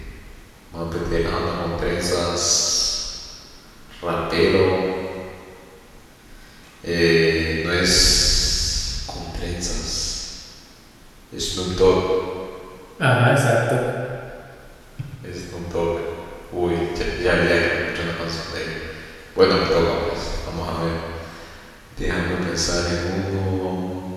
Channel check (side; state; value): both; identical; correlation 1.00